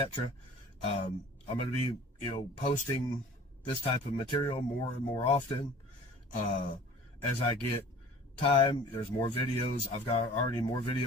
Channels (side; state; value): both; normal; correlation 0.47